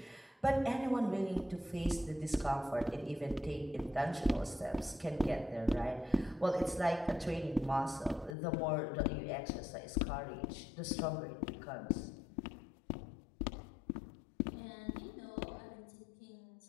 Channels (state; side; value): drops out; right; at 8.3 s